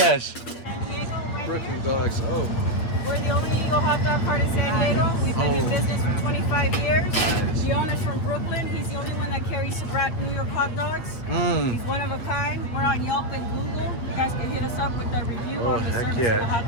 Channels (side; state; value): right; late; 8.6 ms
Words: San Diego, Brooklyn dogs. Oh, we're the only legal hot dog cart in San Diego. We've been in business for 25 years. Nice. The owner's from Brooklyn. He's the only one that carries Sabrat New York hot dogs. He's one of a kind. We're on Yelp and Google. You guys can hit us up with the review Oh, on the heck service of the hot